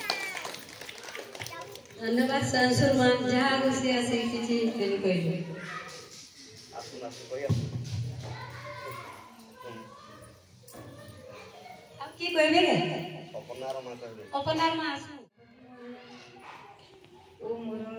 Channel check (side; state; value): both; identical; correlation 1.00